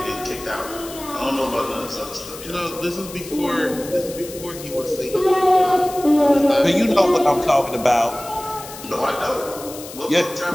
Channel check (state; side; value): noise; left; hiss, 14 dB below the sound